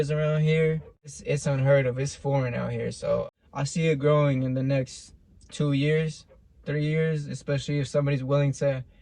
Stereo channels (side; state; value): both; identical; correlation 1.00